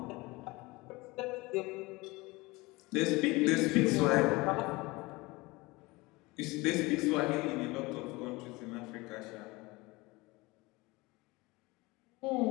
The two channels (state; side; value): quieter; right; 22.8 dB